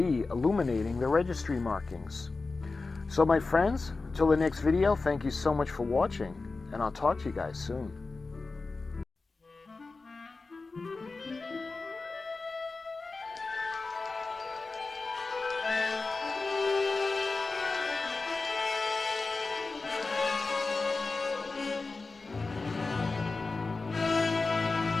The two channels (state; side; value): quieter; right; 3.8 dB